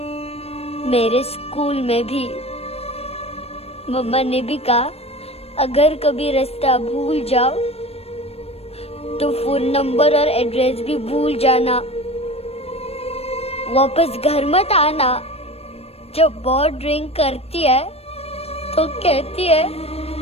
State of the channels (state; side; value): late; right; 0.29 ms